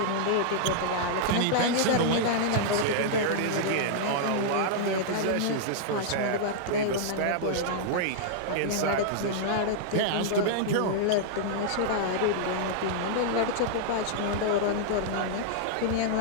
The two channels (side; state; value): both; different; correlation -0.01